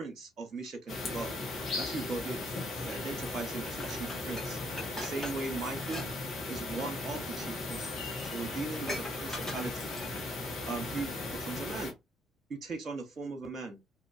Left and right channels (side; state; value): both; normal; correlation 0.69